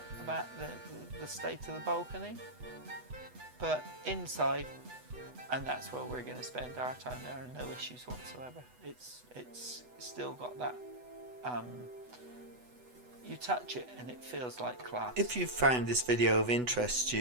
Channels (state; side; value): late; left; 8.1 ms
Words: about the state of the balcony. But inside, and that's where we're going to spend our time, there are no issues whatsoever. It's still got that, you touch it and it feels like class. If you've found this video of interest to